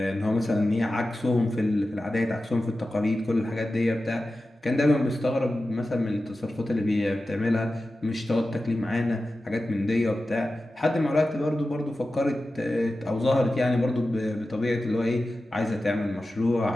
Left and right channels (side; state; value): both; normal; correlation 0.94